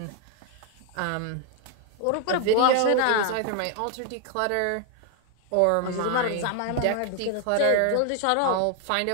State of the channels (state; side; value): different; both; correlation 0.00